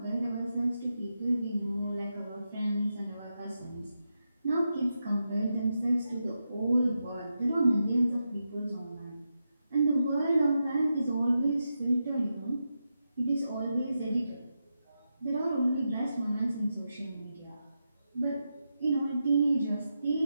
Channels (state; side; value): inverted; both; correlation -0.87